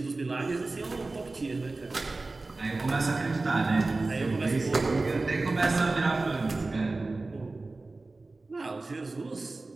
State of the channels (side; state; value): left; quieter; 3.4 dB